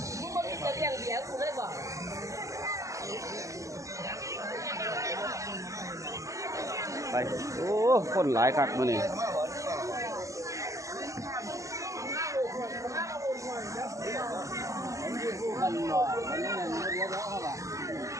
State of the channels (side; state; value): left; late; 0.16 ms